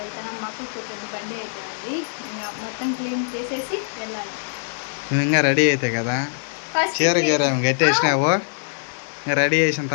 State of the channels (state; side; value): silent; right; digital silence